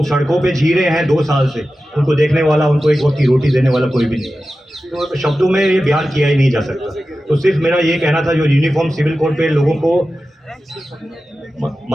सड़कों पे जी रहे हैं 2 साल से। उनको देखने वाला, उनको एक वक्त की रोटी देने वाला कोई भी नहीं है। तो शब्दों में ये बयान किया ही नहीं जा सकता। तो सिर्फ मेरा ये कहना था, जो यूनिफॉर्म सिविल कोड पे लोगों को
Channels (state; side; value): normal; both; correlation 0.94